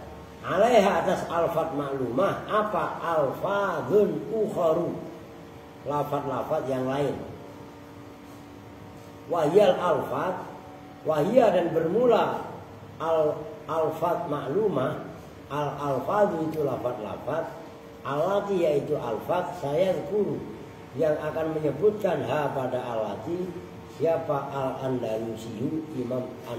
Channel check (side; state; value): both; identical; correlation 1.00